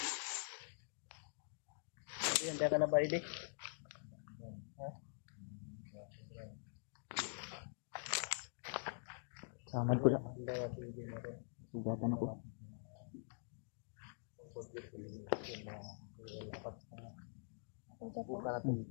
Handa ka na ba, Edi? Samad ko lang. Handa ka si Edi na rin. Sugatan ako. Buka na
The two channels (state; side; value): silent; right; digital silence